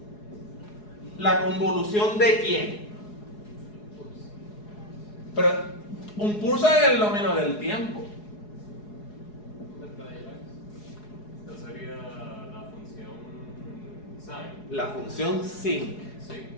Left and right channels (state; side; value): late; right; 4.8 ms